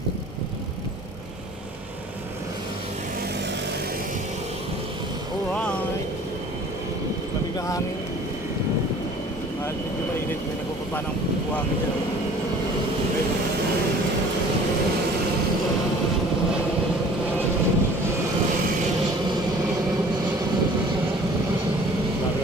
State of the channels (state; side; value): normal; both; correlation 0.49